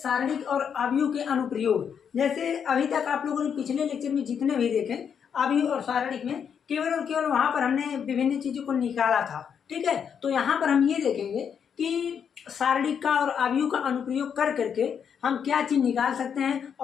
और अवयव के अनुप्रयोग। जैसे अभी तक आप लोगों ने पिछले लेक्चर में जितने भी देखे अवयव और सारणिक में केवल और केवल वहां पर हमने विभिन्न चीजों को निकाला था। ठीक है, तो यहाँ पर हम ये देखेंगे कि सारणिक का और अवयव का अनुप्रयोग कर करके हम क्या चीज निकाल सकते हैं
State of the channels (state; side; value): quieter; right; 7.5 dB